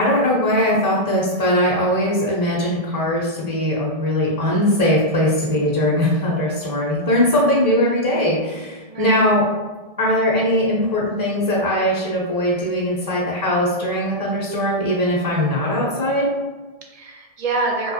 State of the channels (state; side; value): late; left; 1.7 ms